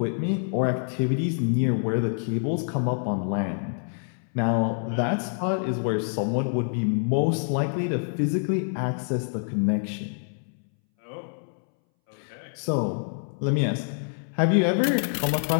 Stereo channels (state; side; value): silent; right; 61 dB below the other